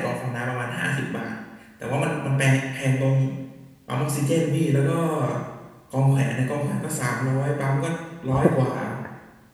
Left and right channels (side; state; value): both; identical; correlation 1.00